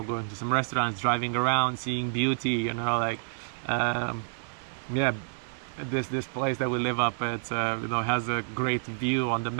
going to some restaurants, driving around, seeing beauty, you know, like yeah, this place that we live up at, you know, has a great view on the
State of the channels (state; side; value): silent; left; digital silence